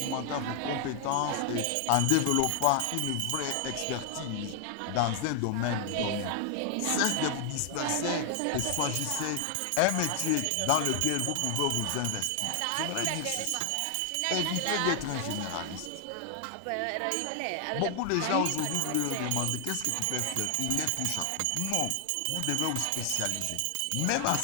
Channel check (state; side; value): different; both; correlation 0.00